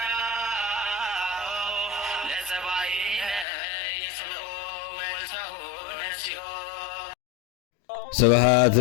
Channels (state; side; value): drops out; right; at 3.5 s